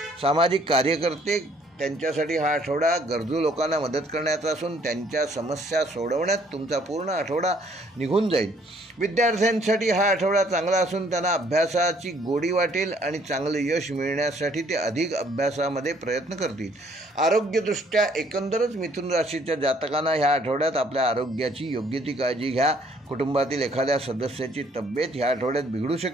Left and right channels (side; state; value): both; normal; correlation 0.63